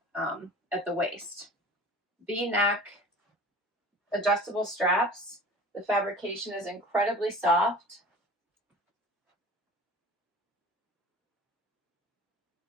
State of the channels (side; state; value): both; normal; correlation 0.41